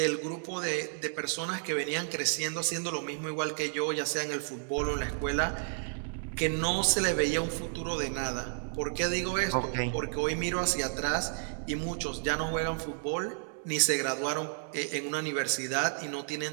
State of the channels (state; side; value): silent; left; digital silence